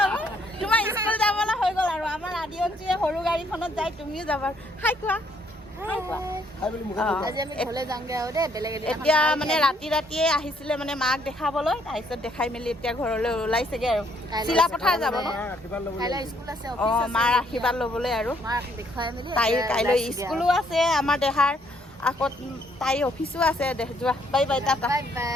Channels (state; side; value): normal; both; correlation 0.68